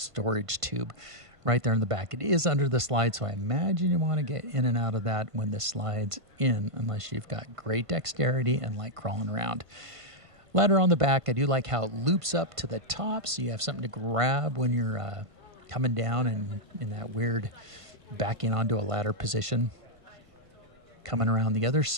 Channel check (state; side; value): late; left; 1.5 ms